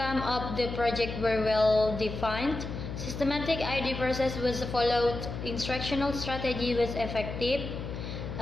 of the project were well defined, systematic idea process was followed, instructional strategy was effective.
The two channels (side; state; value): left; noise; hum, 7 dB below the sound